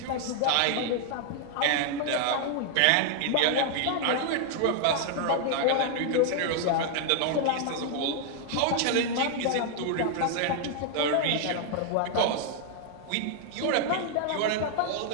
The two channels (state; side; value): different; both; correlation 0.00